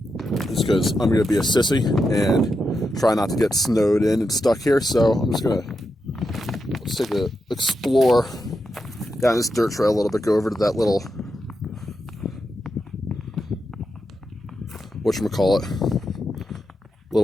just because I'm going to be a sissy and try not to get snowed in and stuck here. So I'm just going to let's take a explore down this dirt trail a little bit. Go over to that little whatchamacallit,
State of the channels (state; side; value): normal; both; correlation 0.86